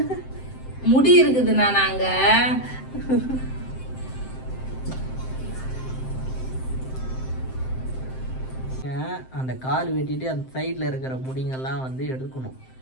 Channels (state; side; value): late; right; 7.7 ms